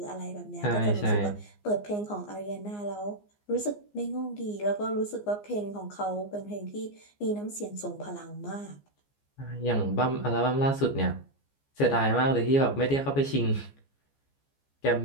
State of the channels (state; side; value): late; right; 14 ms